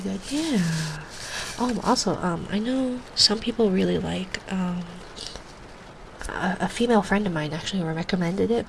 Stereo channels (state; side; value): identical; both; correlation 1.00